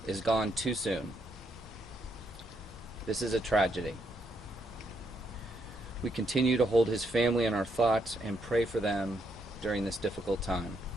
is gone too soon. This is a tragedy. We continue to hold his family in our thoughts and pray for them during this difficult time.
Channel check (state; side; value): normal; both; correlation 0.77